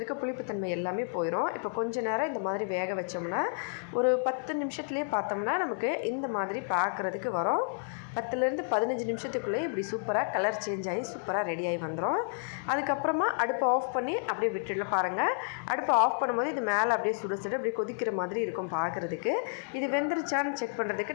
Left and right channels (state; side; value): silent; right; 57 dB below the other